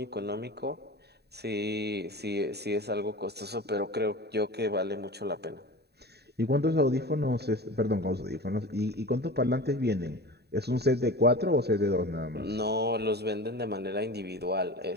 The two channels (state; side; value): late; left; 0.48 ms